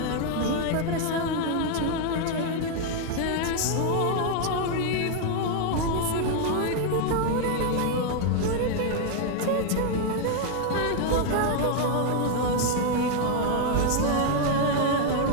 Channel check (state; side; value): different; both; correlation 0.00